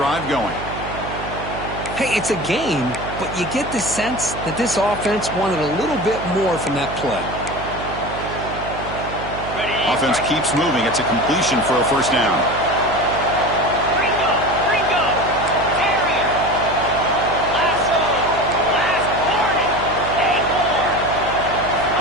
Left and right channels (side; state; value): right; noise; hum, 10 dB below the sound